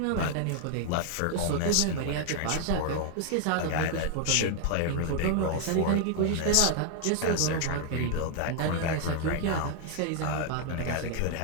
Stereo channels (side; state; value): both; different; correlation 0.00